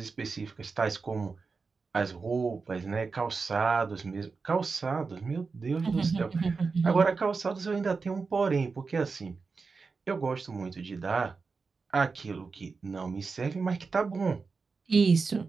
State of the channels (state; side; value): quieter; left; 4.6 dB